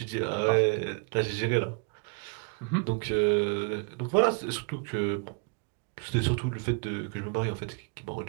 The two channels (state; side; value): quieter; left; 36.7 dB